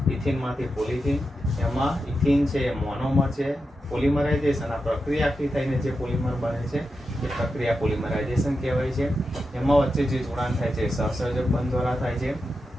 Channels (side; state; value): both; normal; correlation 0.89